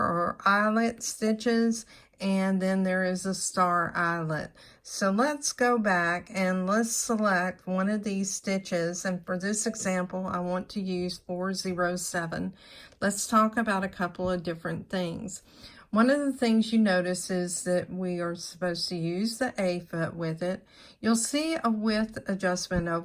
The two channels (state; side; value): identical; both; correlation 1.00